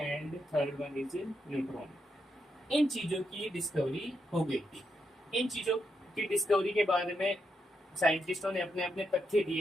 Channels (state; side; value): normal; both; correlation 0.82